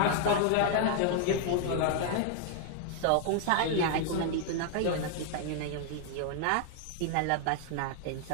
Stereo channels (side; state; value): both; different; correlation 0.00